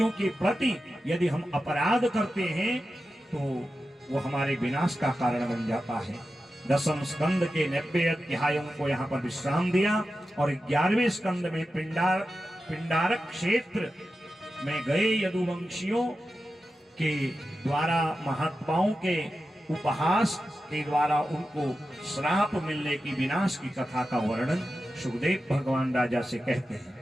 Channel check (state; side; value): normal; both; correlation 0.92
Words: के प्रति यदि हम अपराध करते हैं तो वो हमारे विनाश का कारण बन जाता है। 10वें स्कंद के 90 अध्यायों को यहाँ पर विश्राम दिया और 11वें स्कंद में पिंडारक क्षेत्र में गए यदुवंशियों के द्वारा महात्माओं के उपहास के द्वारा उनको श्राप मिलने की, विनाश की कथा का वर्णन सुखदेव भगवान राजा से कहते हैं।